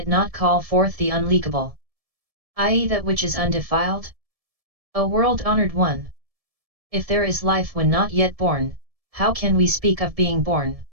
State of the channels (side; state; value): left; late; 1.7 ms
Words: not call forth the unleakable, i.e. that which is undefiled? O world-honored one! If there is life when not yet born, how can we speak of being born?